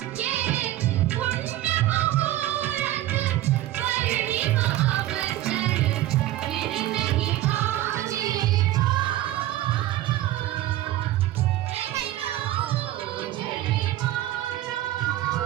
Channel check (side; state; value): left; quieter; 14.7 dB